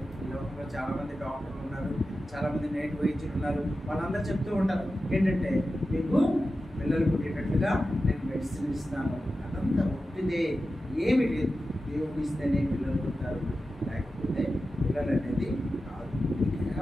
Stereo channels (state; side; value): normal; both; correlation 0.93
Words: ఈ లోకంలో చాలామంది డాక్టర్లు ఉన్నారు, చాలామంది నేటి వైద్యులు ఉన్నారు. వాళ్ళందరూ చెప్తూ ఉంటారు ఏంటంటే మీకు పిల్లలు పుట్టేటట్లుగా నేను మెడిసిన్ ఇస్తాను. అదంతా ఒట్టిదే, ఏమి లేదు. దేవుడు ఇస్తేనే పిల్లలు పుట్టారు, లేకపోతే పిల్లలు అనేది కాదు.